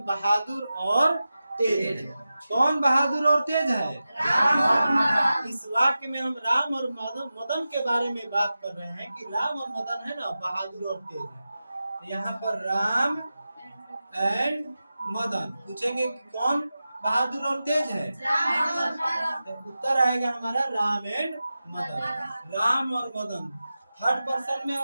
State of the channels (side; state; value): both; inverted; correlation -0.93